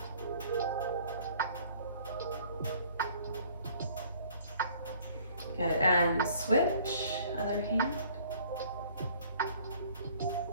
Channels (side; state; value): both; inverted; correlation -0.57